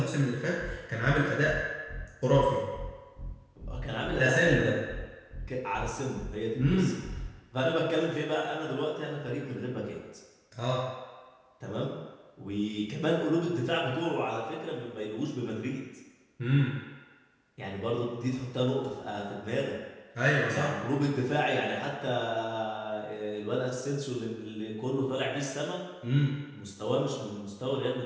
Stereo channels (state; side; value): identical; both; correlation 1.00